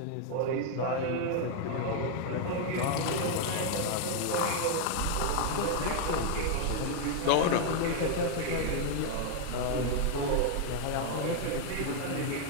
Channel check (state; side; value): different; both; correlation 0.00